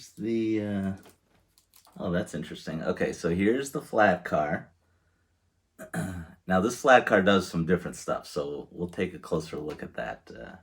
oh, that's interesting. Okay, so here's the Flatcar. Now this Flatcar does some different stuff, so we'll take a closer look at that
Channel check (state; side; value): identical; both; correlation 1.00